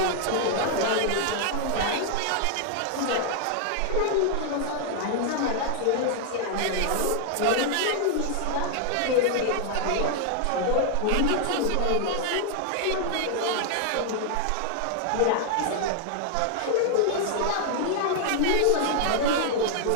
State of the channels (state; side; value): different; both; correlation 0.00